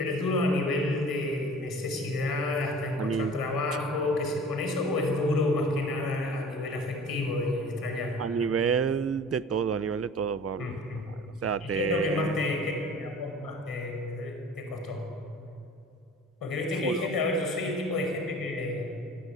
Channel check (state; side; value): normal; both; correlation 0.43